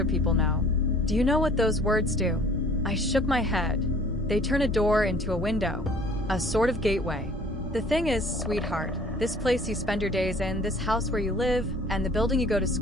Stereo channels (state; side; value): normal; both; correlation 0.52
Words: people know. Do you know what those words do? I shook my head. They turn a door into a window, a sort of gateway. The thing is, sweetheart, this place you spend your days in, this house where you live, and the building you go to